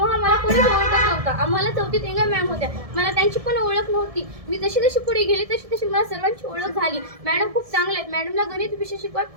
मला कोणी ओळखत नव्हतं. आम्हाला चौथीत इंगल मॅम होत्या, मला त्यांची पण ओळख नव्हती. मी जशी जशी पुढे गेली तशी तशी मला सर्वांची ओळख झाली. मॅडम खूप चांगले आहेत. मॅडमला गणित विषय शिकवायला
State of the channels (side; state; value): left; late; 1.7 ms